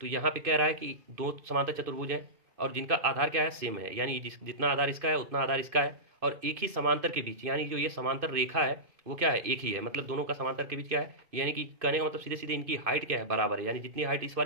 तो यहाँ पे कह रहा है कि दो समांतर चतुर्भुज है और जिनका आधार क्या है सेम है, यानी जितना आधार इसका है उतना आधार इसका है, और एक ही समांतर के बीच, यानी जो ये समांतर रेखा है वो क्या है एक ही है, मतलब दोनों का समांतर के बीच क्या है, यानी कि कहने का मतलब सीधे सीधे इनकी हाइट क्या है बराबर है, यानी जितनी हाइट इस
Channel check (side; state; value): left; late; 2.5 ms